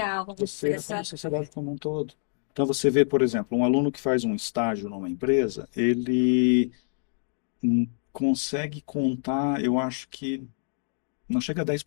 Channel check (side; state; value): right; silent; 59 dB below the other